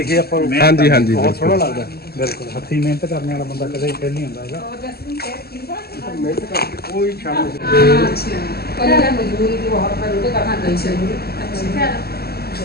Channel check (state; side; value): late; right; 0.46 ms